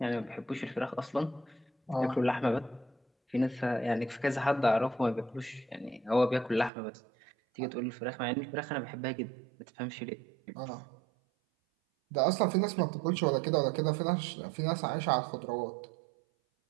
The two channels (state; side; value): drops out; left; at 6.7 s